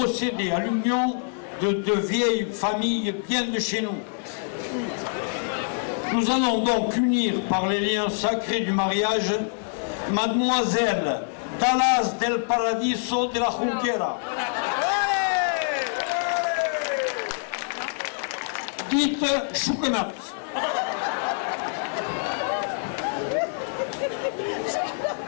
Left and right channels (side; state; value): right; silent; digital silence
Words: à l'union de deux vieilles familles bien de chez nous. Nous allons donc unir par les liens sacrés du mariage Mademoiselle Dallas del Paradiso de la Junquera, dite Choukenat,